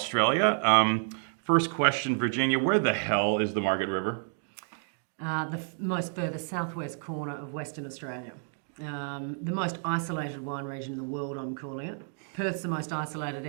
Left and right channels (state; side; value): silent; left; 58 dB below the other